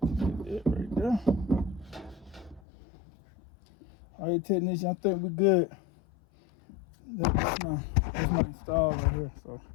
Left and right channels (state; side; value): drops out; right; at 2.6 s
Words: That right there. All right, technician, I think we're good. That's my install right here. So